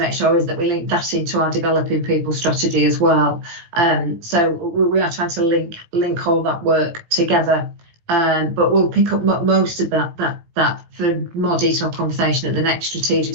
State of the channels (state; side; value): late; left; 18 ms